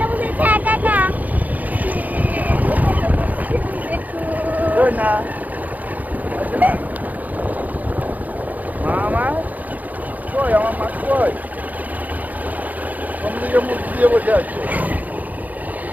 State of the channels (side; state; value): left; late; 0.079 ms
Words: বসেছে একা একা। না মামা কই আমার মা কই কোনদিকে মুখ দিয়ে বসে আছে